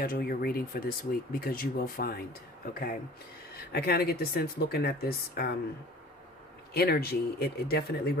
your reading for this week because you will find, okay? I kind of get the sense looking at this energy, it definitely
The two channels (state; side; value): normal; both; correlation 0.46